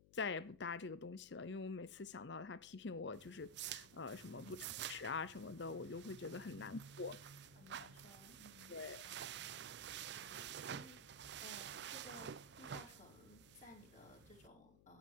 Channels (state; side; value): noise; left; hum, 22 dB below the sound